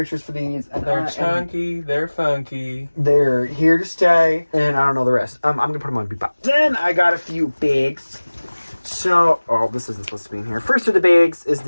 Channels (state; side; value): inverted; both; correlation -1.00